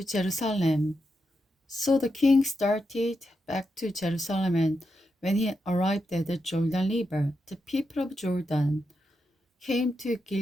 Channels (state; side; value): normal; both; correlation 0.86